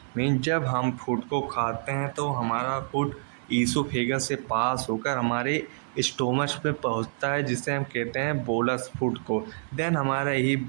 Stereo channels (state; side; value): silent; left; 60 dB below the other